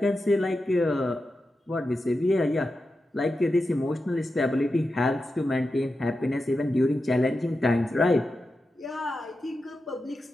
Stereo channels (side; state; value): both; normal; correlation 0.90